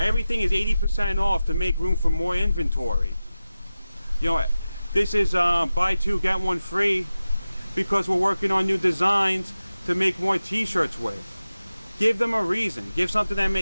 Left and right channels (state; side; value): inverted; both; correlation -0.95